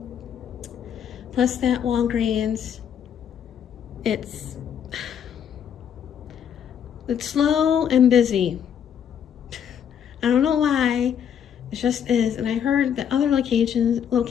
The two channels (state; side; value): quieter; right; 8.6 dB